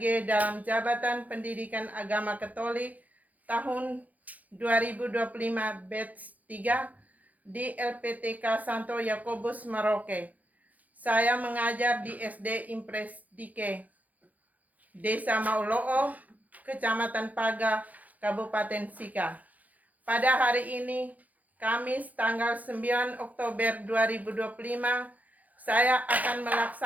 dalam Jabatan Pendidikan Agama Katolik tahun 2025 batch 3 di LPTK Santo Yakobus Merauke. Saya mengajar di SD Impres Dike, Desa Mauloo, Kecamatan Paga, Kabupaten Sika. Pada hari ini, Kamis tanggal 9 Oktober 2025, saya akan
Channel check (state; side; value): late; left; 0.078 ms